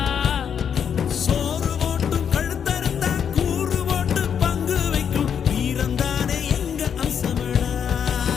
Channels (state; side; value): quieter; right; 7.8 dB